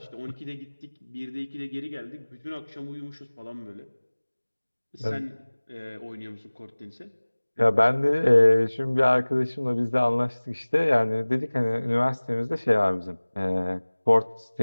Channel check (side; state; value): both; inverted; correlation -1.00